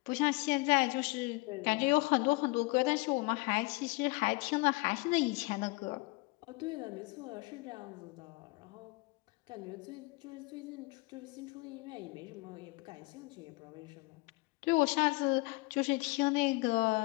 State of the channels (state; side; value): quieter; right; 25.1 dB